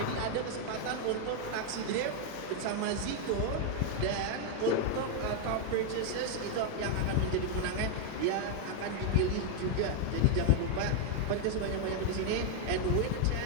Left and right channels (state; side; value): different; both; correlation 0.00